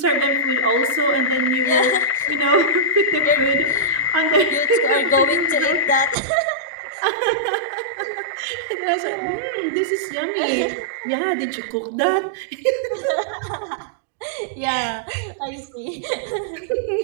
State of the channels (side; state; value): left; drops out; at 6.2 s